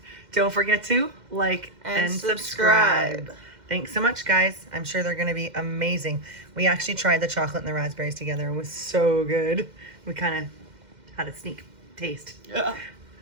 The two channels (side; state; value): left; late; 2.1 ms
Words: Don't forget to like and subscribe. Thanks so much, guys. I'm sure they're going to be amazing. We actually tried the chocolate and the raspberries together. It was so good. We kind of had a sneak taste. Yeah.